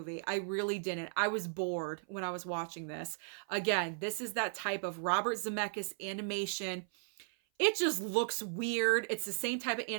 I really didn't. I was bored when I was watching this. Again, this is that type of Robert Zemeckis animation. It just looks weird. It's the same type of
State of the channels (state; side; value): silent; left; 54 dB below the other